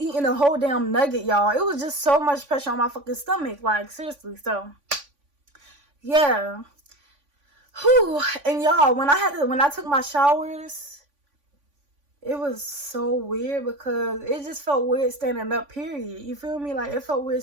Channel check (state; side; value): late; left; 3.5 ms